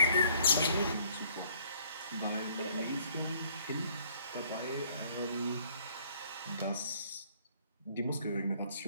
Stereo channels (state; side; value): inverted; both; correlation -0.61